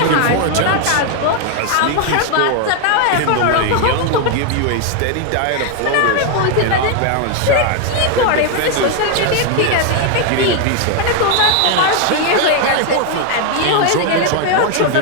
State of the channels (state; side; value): different; both; correlation 0.01